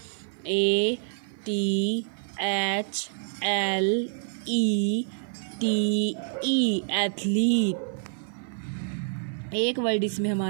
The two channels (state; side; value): silent; left; 55 dB below the other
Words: ATHLETE, एथलीट। एक वर्ड इसमें